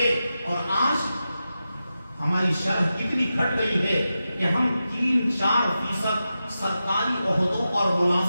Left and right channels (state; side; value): inverted; both; correlation -0.91